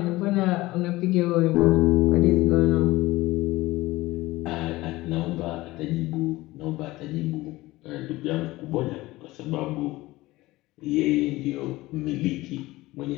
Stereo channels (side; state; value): right; quieter; 19.0 dB